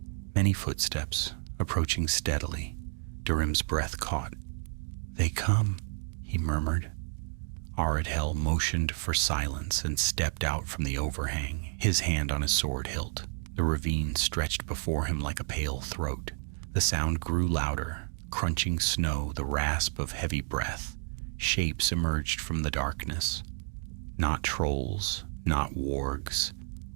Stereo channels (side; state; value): left; silent; 57 dB below the other